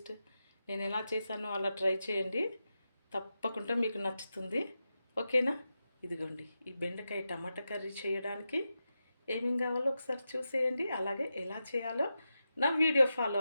నేను ఎలా చేశానో అలా ట్రై చేయండి, తప్పకుండా మీకు నచ్చుతుంది. ఓకేనా? ఇదిగోండి, ఈ బెండకాయ టమాటా కర్రీ చేయడానికి ఏమేం కావాలో ఒకసారి చూసేయండి. అలాగే ఎలా చేయాలో నా వీడియో ఫాలో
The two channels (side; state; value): both; inverted; correlation -0.90